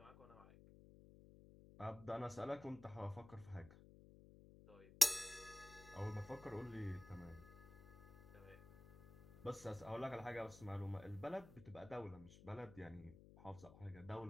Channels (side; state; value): left; noise; hum, 18 dB below the sound